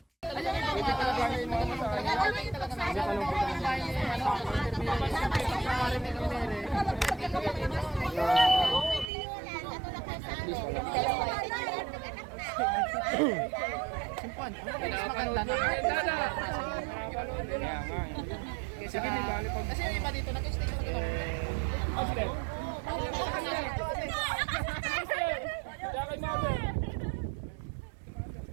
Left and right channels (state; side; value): drops out; left; at 9.1 s